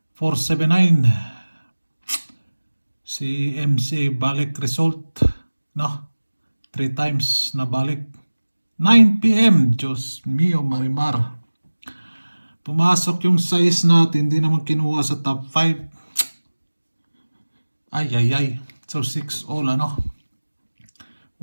479. Si MCA balik result, no? 3 times na balik. 9 p.m. Diyos mio marimar. Pumasok yung size natin, hindi naman kinuha sa top 5. Ay. So 6 all, ano?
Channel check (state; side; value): inverted; both; correlation -1.00